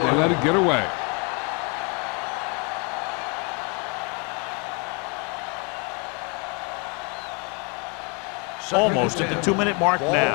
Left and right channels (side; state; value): right; quieter; 32.4 dB